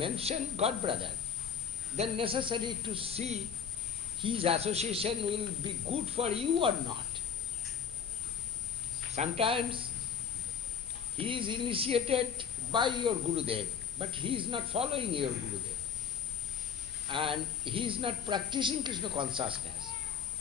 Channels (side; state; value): right; quieter; 7.1 dB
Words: God brother, then necessary to see his association will be good for you or not. Sometimes he is initiated by your Gurudev, but he is not following your Gurudev. And he is not practicing Krishna consciousness.